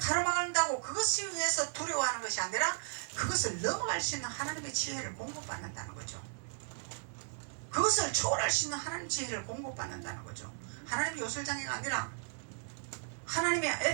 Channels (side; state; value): left; silent; 54 dB below the other